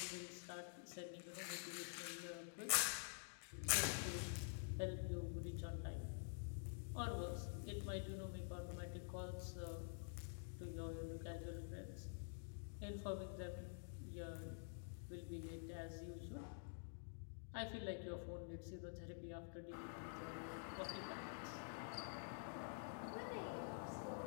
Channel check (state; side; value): silent; right; digital silence